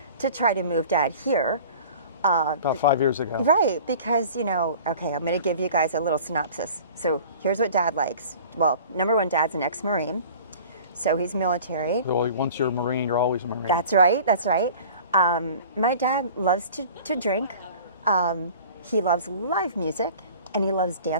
to try to move Dad here. About 5 years ago. Right, because, okay, I'm going to give you guys a little synopsis. So here's what Dad likes. Well, number one, Dad's an ex-Marine, so he's military. Well, once you're a Marine, you're always a Marine. That's right, that's right. My dad loves to drink. He loves live music, and he loves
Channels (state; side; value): inverted; both; correlation -0.43